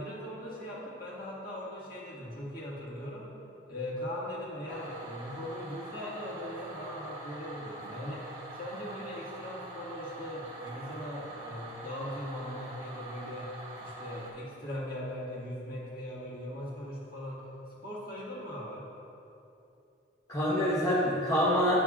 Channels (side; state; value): both; normal; correlation 0.36